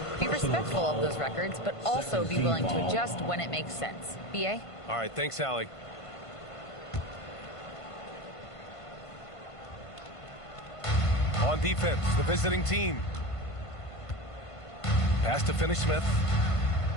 be respectful of those records, but also be willing to adjust when it makes sense." BA? All right, thanks, Allie. On defense, the visiting team. Pass to Finney-Smith.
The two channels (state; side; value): late; right; 1.5 ms